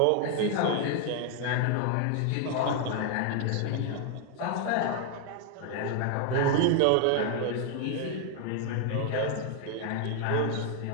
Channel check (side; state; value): both; different; correlation 0.00